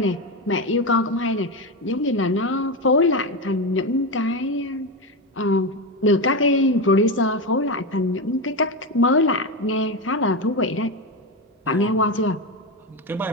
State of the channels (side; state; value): both; normal; correlation 0.14